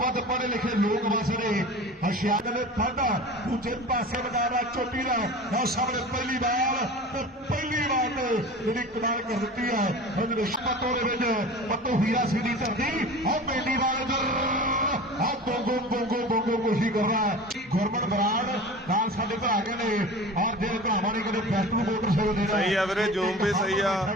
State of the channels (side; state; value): both; normal; correlation 0.36